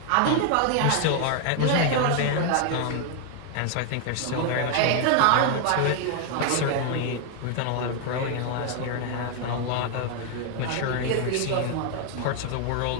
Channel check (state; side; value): different; both; correlation 0.00